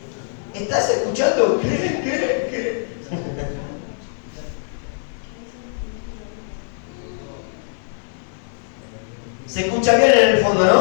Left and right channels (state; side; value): silent; right; digital silence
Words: ¿Estás escuchando? ¿Qué? Se escucha bien en el fondo,